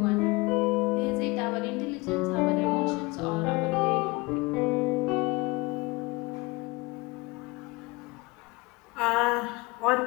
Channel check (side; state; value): right; quieter; 24.2 dB